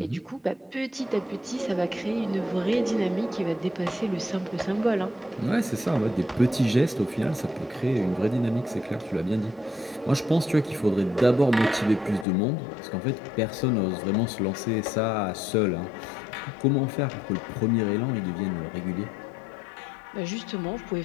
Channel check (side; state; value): right; drops out; at 12.2 s